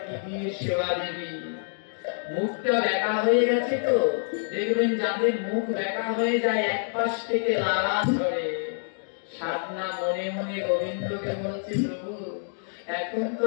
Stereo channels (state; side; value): silent; right; digital silence